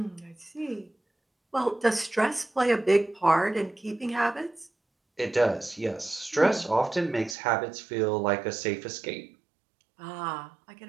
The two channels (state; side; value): drops out; left; at 7.4 s